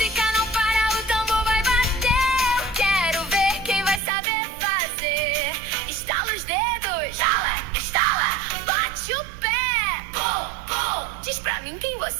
não para, o tambor vai bater. Eu quero ver quem vai saber fazer. Estala os dedos, estala, estala, bate o pé, pum, pum. Diz pra mim quem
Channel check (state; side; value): drops out; left; at 4.0 s